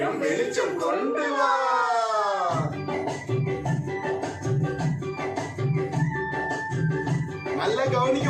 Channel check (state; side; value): identical; both; correlation 1.00